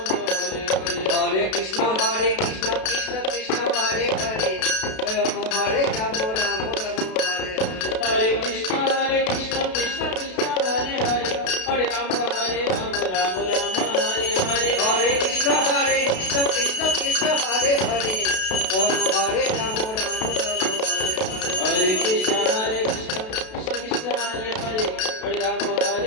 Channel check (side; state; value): right; late; 32 ms